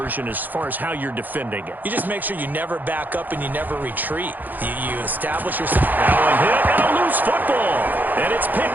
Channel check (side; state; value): left; late; 0.085 ms